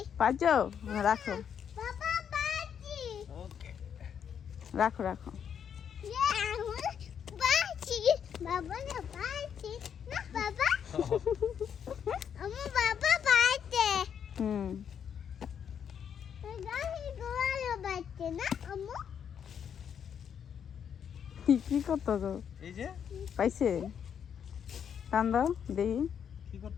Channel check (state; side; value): quieter; right; 8.1 dB